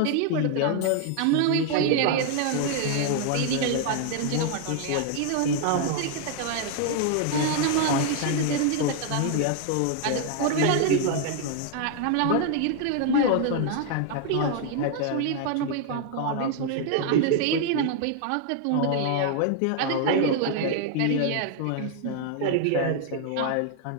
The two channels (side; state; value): both; different; correlation 0.00